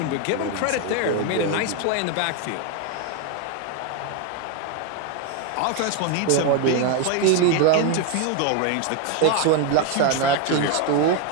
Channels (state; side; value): different; both; correlation 0.02